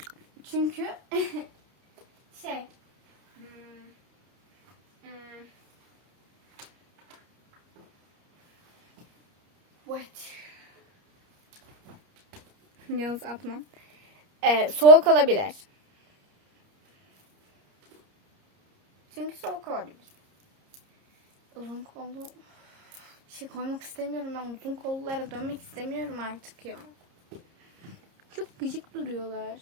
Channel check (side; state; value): left; late; 30 ms